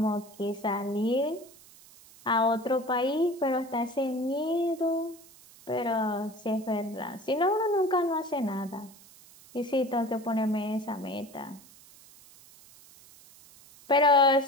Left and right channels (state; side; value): noise; right; hiss, 23 dB below the sound